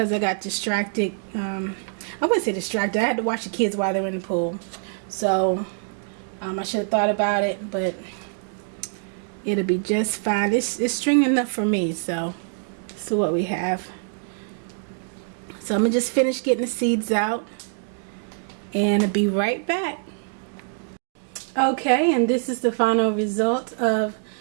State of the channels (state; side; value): silent; left; digital silence